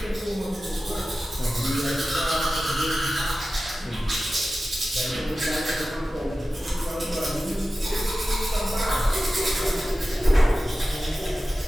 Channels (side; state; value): both; normal; correlation 0.94